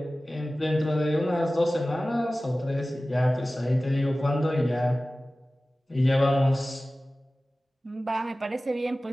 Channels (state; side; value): normal; both; correlation 0.97